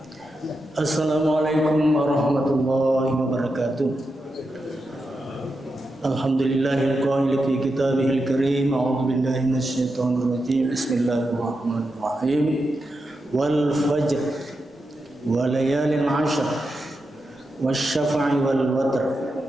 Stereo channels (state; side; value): normal; both; correlation 0.88